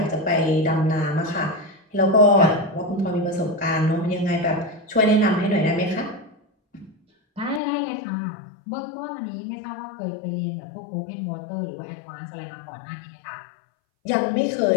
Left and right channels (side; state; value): right; drops out; at 7.6 s